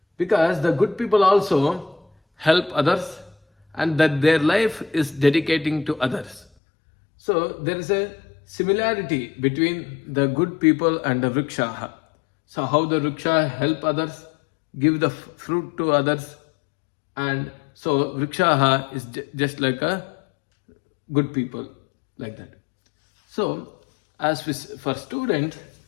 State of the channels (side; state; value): right; drops out; at 6.5 s